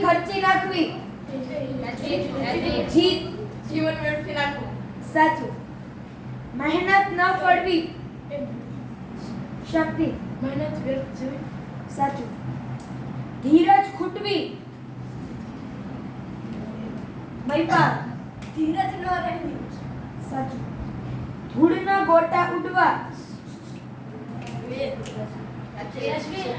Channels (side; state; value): both; identical; correlation 1.00